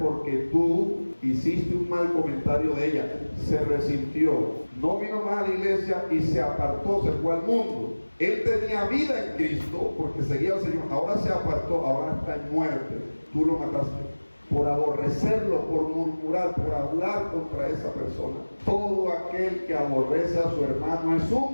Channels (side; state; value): both; inverted; correlation -1.00